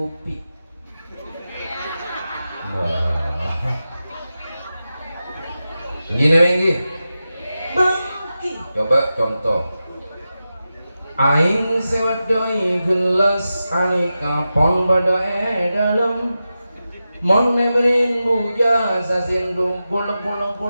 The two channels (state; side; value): inverted; both; correlation -0.92